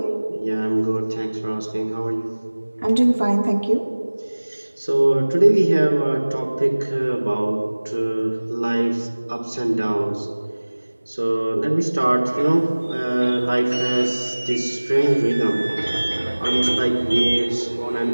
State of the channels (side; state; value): both; inverted; correlation -1.00